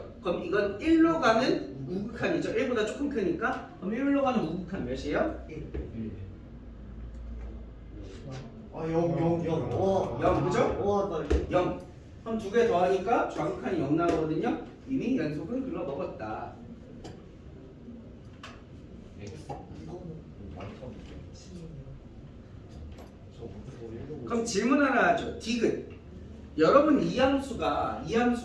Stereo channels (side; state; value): both; identical; correlation 1.00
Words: 그럼 이건 1로 가는 우극한이죠. 1보다 조금 크니까. 그럼 1로 가는 우극한 몇이에요? 1. 아, 0. 와. 0, 그죠? 와, 나 이거 0. 그럼 두 개 더하니까 좌극한이 0 나오거든요. 이미 연속은 글러먹었다. X. 이거는 완전 저 그럼 질문 하나 하죠. 디귿. 여러분 이 함수가